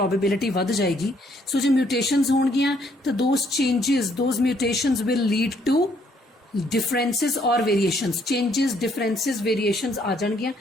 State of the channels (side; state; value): both; normal; correlation 0.68